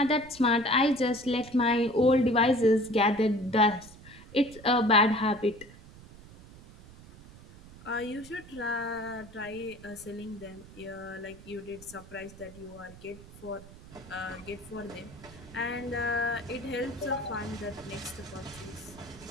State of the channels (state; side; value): noise; right; rumble, 19 dB below the sound